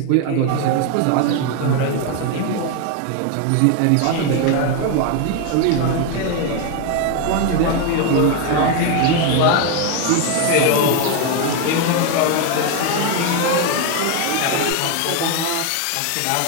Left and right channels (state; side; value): different; both; correlation 0.01